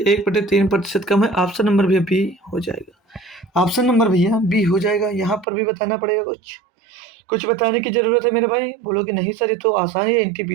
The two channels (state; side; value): drops out; left; at 5.5 s